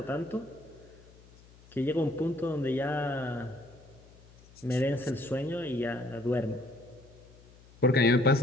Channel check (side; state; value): left; noise; hum, 24 dB below the sound